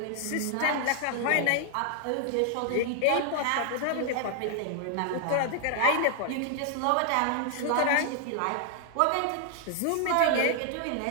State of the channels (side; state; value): both; different; correlation 0.00